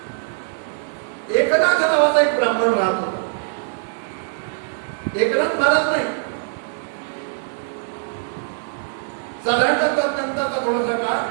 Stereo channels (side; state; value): left; silent; 64 dB below the other